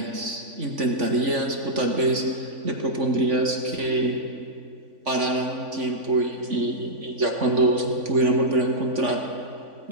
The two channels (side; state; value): left; late; 3.5 ms